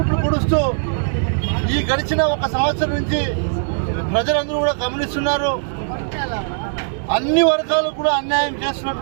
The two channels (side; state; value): left; silent; 66 dB below the other